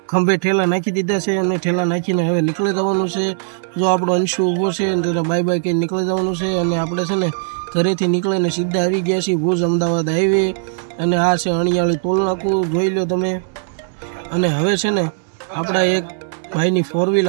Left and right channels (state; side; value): silent; left; 65 dB below the other